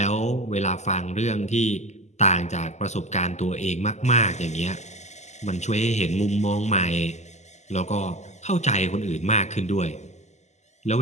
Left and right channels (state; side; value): late; right; 0.33 ms